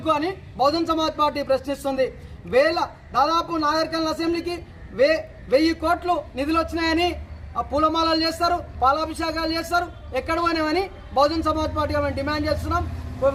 అని బహుజన్ సమాజ్ పార్టీ ప్రశ్నిస్తుంది। దాదాపు నాగర్ కర్నూల్ అసెంబ్లీకి 1000 కోట్లు నిధులు వచ్చినాయని పూలమాలలు చేస్తారు, పాలాభిషేకాలు చేస్తారు, ఎక్కడ పోయినామని బహుజన్ సమాజ్ పార్టీ మేము డిమాండ్ చేస్తున్నాం,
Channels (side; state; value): both; identical; correlation 1.00